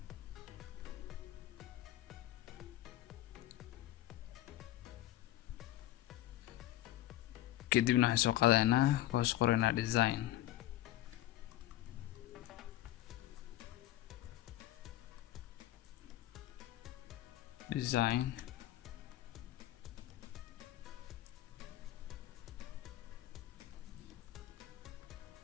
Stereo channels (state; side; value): quieter; right; 14.4 dB